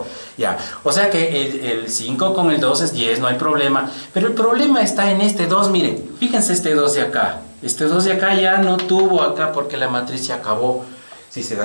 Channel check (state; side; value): inverted; both; correlation -1.00